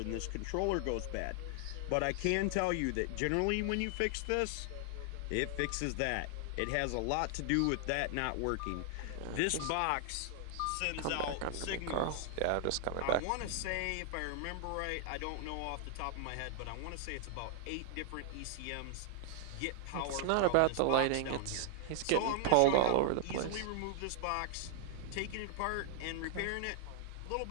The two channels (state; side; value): different; both; correlation 0.00